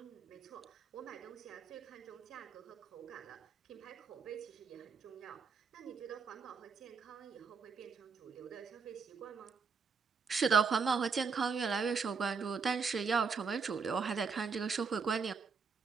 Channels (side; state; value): left; quieter; 5.4 dB